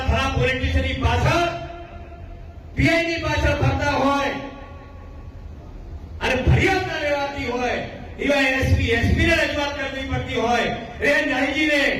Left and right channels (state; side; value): identical; both; correlation 1.00